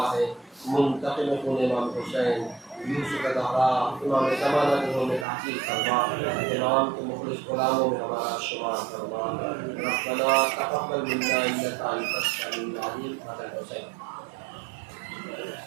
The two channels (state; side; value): drops out; left; at 5.2 s